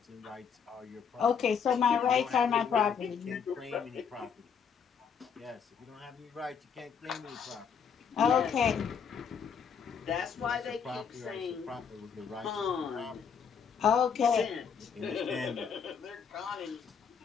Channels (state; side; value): quieter; right; 6.8 dB